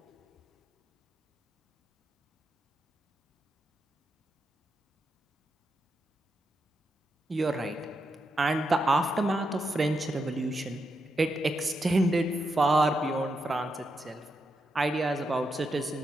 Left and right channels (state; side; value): normal; both; correlation 0.84